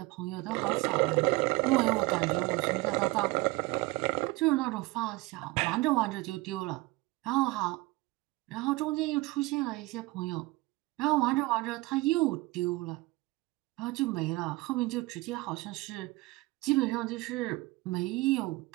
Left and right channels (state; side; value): quieter; left; 21.9 dB